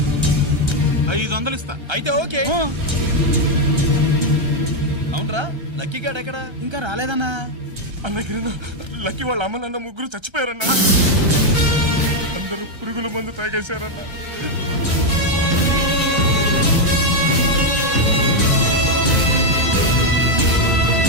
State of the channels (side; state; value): left; late; 1.2 ms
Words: 500 ఇస్తా. అయితే ఓకే. అవునరా, లక్కీ గాడు ఎక్కడా? ఇంకా రాలేదన్నా. అన్నగిరిన లక్కీ వాళ్ళ అమ్మ నాన్న ముగ్గురు చచ్చిపోయారన్నా. అందరూ పురుగుల మందు తాగేశారన్నా.